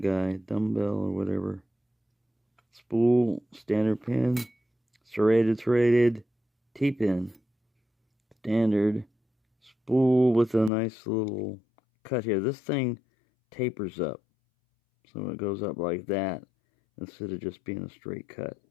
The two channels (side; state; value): right; drops out; at 10.7 s